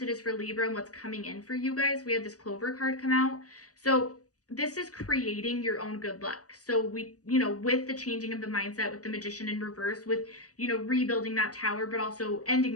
for Libra and what's coming in for you guys, we had this clover card come out. So this is creating your own good luck. So we, with the changing of the mindset, with the magician in reverse, with, rebuilding that tower, but also ending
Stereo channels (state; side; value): late; right; 0.67 ms